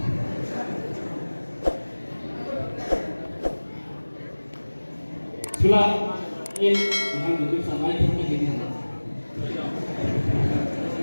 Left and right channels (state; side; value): inverted; both; correlation -1.00